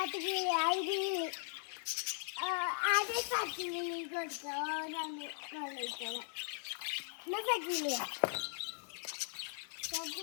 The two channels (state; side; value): silent; right; 52 dB below the other